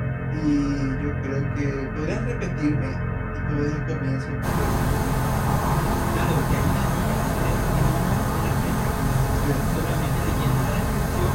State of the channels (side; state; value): both; identical; correlation 1.00